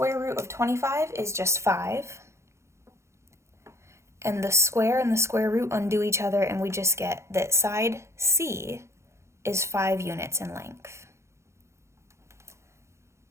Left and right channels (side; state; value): left; late; 0.13 ms